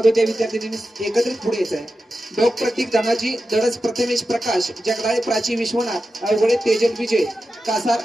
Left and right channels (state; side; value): normal; both; correlation 0.91